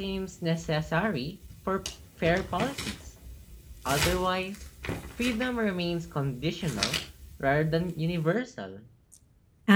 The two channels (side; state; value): both; identical; correlation 1.00